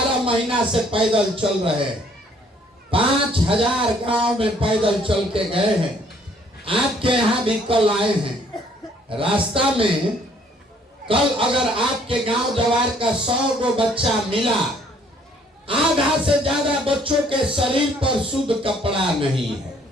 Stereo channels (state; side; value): normal; both; correlation 0.62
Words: महीना से पैदल चल रहे, 5000 गांव में पैदल चल के गए हैं। आपके यहाँ भी कल आए हैं। रास्ता में कल अगर आपके गांव जवार का 100 गो बच्चा मिला, आधा से ज्यादा बच्चों के शरीर पर शुद्ध कपड़ा नहीं है।